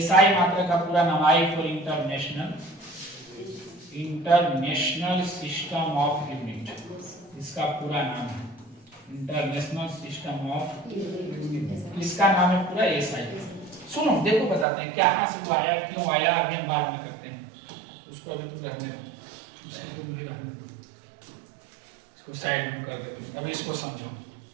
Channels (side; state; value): left; drops out; at 14.7 s